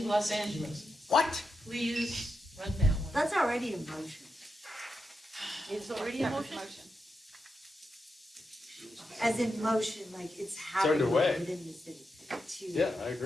Los Angeles. What? Please run that one. That's already a motion. It's already a motion. As in motion, like it's happening underway. within the city. to- Yeah, I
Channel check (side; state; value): both; normal; correlation 0.86